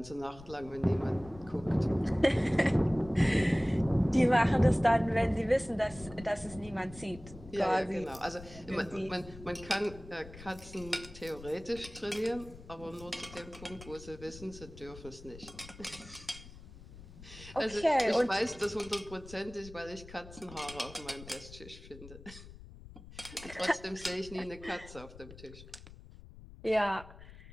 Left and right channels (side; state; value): left; noise; rumble, 17 dB below the sound